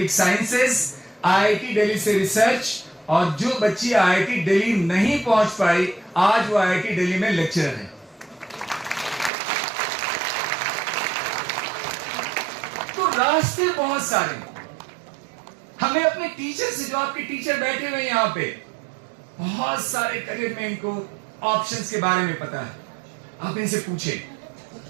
sciences, IIT Delhi से रिसर्च। और जो बच्ची आईआईटी दिल्ली नहीं पहुंच पाई, आज वो आईआईटी दिल्ली में लेक्चरर है। तो रास्ते बहुत सारे। हमें अपने टीचर से, जो आपके टीचर बैठे हुए यहां पे, बहुत सारे करियर में इनको ऑप्शंस के बारे में पता है। आप इनसे पूछें,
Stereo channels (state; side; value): drops out; left; at 9.3 s